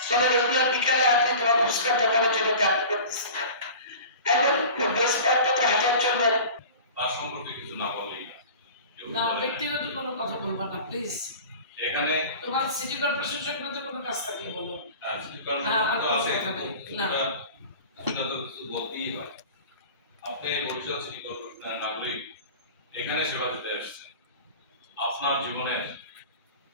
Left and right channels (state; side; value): inverted; both; correlation -0.38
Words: চলো রেগুলার বিকালে আপনি তোমার ফুচকার দোকানে চলে যাতে করতেছে, এখন বেশ কয়েকটা হাজার জন্য তার সম্পর্কে কিছু না বললেই না, ব্যক্তিগত কোনো কথা বলবা না প্লিজ। এখানে তোমার সিটি কর্পোরেশন সংক্রান্ত কোনো কাজ থাকলে বলো। সিটি কর্পোরেশন তো আছে, সেটা তো কিছু বলতেই হয়। আপনি বরিশাল সিটি কর্পোরেশনের নাগরিক, এখানে সেবা দিতে আসছেন। আপনার জীবনের